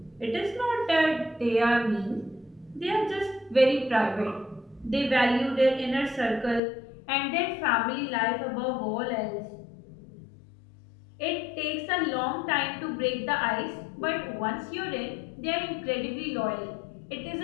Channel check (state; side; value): drops out; right; at 6.6 s